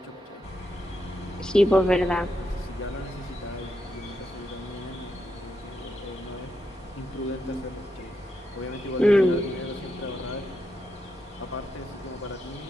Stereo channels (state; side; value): normal; both; correlation 0.83